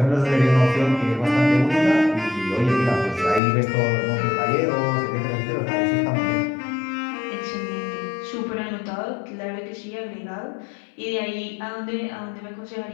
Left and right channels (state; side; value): drops out; right; at 3.4 s